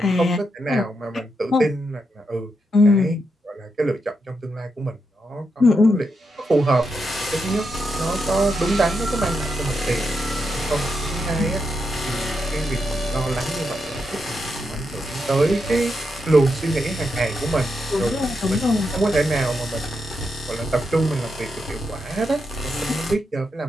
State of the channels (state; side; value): normal; both; correlation 0.83